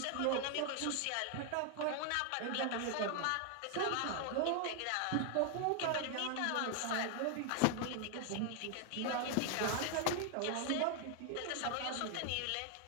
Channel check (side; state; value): both; different; correlation 0.00